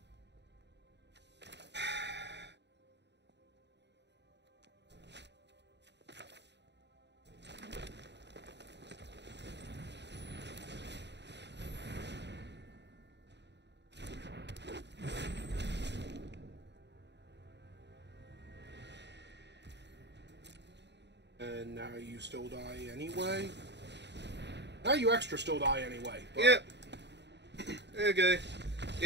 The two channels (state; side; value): late; left; 0.50 ms